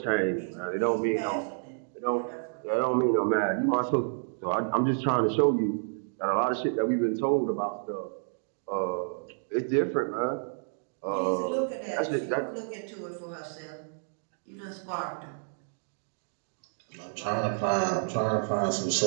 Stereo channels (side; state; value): left; silent; digital silence